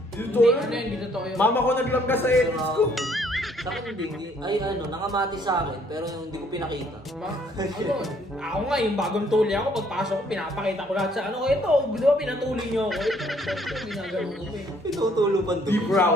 Hindi totoo yun. Mama ko naglangga sa edits ko. Sa akin hindi. Ay ano, nakamatis sa akin, pero yung hindi ko pinakita. Ako nga, yung bagong tuli ako, pagpasok ko, pinapakita ko lahat sa ano, ito, di ba pinatuli nyo ako? Ito, ginagano ko eh. Pinutulupan Be doon.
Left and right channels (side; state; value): both; normal; correlation 0.64